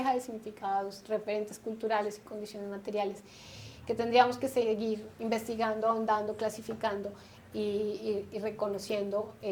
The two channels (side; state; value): both; identical; correlation 1.00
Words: de significados, referentes culturales y condiciones materiales que tendríamos que seguir investigando, ahondando, clasificando y reconociendo